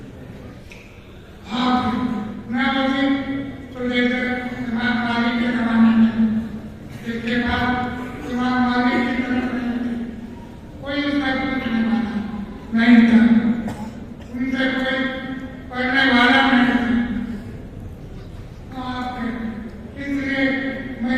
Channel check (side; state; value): both; identical; correlation 1.00